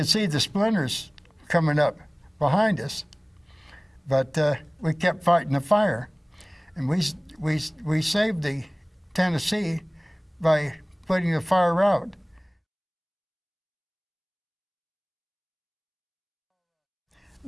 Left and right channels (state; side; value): identical; both; correlation 1.00